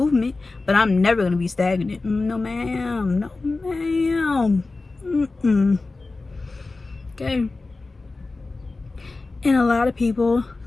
but I'm never gonna be stagnant. No ma'am. Okay. And a lot of people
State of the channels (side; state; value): right; quieter; 3.5 dB